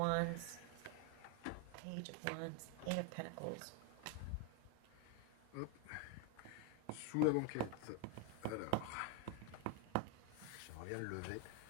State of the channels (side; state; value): both; different; correlation 0.01